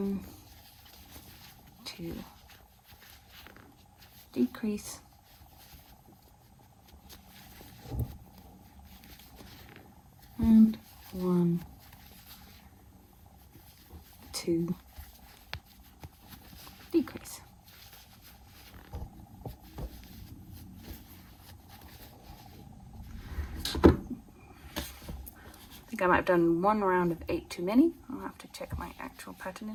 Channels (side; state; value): both; identical; correlation 1.00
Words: 2, decrease. And 1, 2, decrease. I think I might have done 1 round of 8 too many. I'll have to check my actual pattern